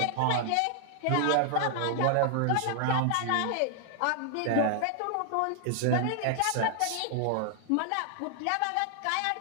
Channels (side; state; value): both; different; correlation 0.00